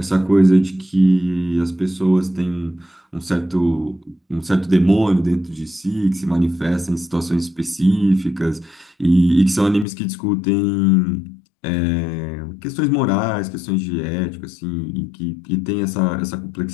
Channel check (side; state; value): right; drops out; at 9.9 s